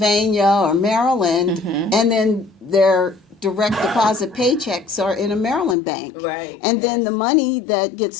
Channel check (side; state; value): right; drops out; at 5.8 s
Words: or Maryland, and then their direct deposit paychecks are in a Maryland bank. Right. And then the money that gets